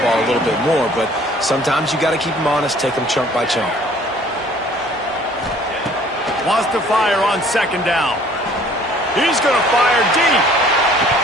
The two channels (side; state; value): both; normal; correlation 0.54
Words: a little bit more. But sometimes you got to keep them honest, take them chunk by chunk. Wants to fire on 2nd down. He's going to fire deep.